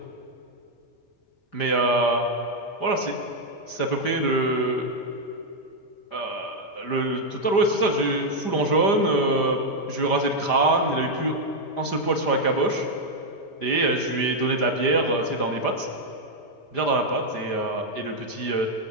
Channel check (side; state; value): right; late; 5.0 ms